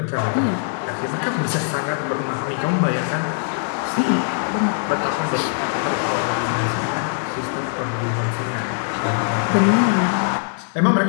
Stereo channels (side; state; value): right; silent; 65 dB below the other